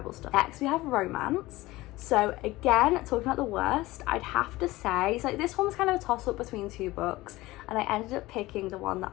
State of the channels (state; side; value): quieter; right; 18.9 dB